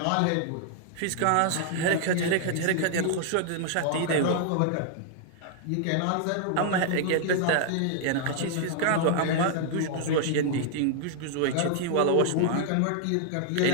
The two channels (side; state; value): both; different; correlation -0.01